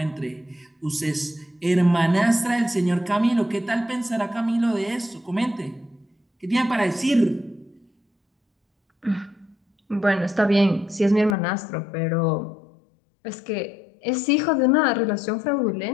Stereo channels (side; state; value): right; drops out; at 11.4 s